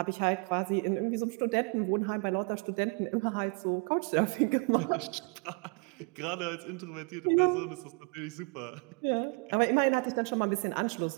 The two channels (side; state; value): left; quieter; 32.7 dB